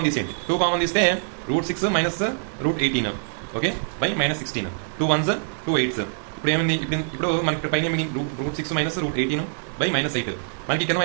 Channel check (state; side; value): silent; left; 61 dB below the other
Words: తీసేయండి. 2 కామన్ తీస్తే √6 - √18. Okay, by -16. 2 1s 2 8s. ఇప్పుడు ఏమైంది, ఇప్పుడు మనకి ఇక్కడ పైన √6 - √18 బై -8. మనకి కింద